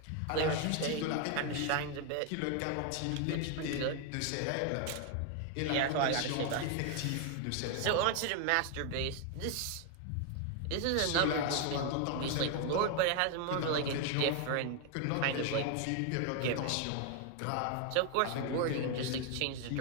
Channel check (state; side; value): different; both; correlation 0.01